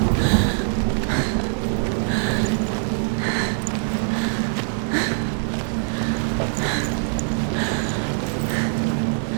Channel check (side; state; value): left; silent; digital silence